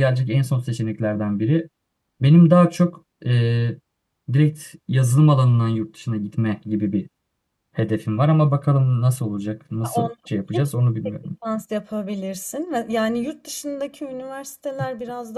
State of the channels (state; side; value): identical; both; correlation 1.00